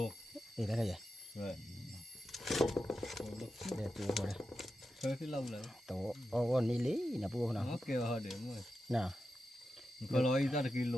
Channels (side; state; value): both; normal; correlation 0.90